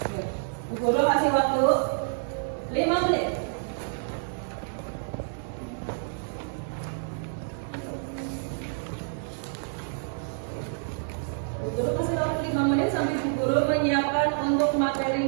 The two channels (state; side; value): silent; left; digital silence